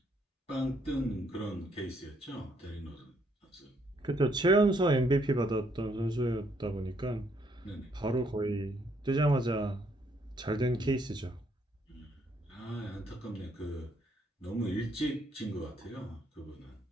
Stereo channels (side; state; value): both; normal; correlation 0.70